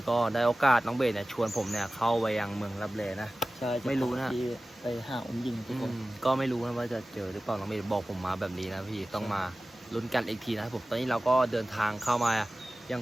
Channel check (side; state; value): both; normal; correlation 0.96